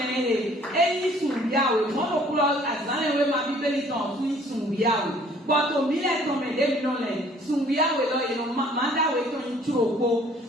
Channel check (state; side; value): normal; both; correlation 0.57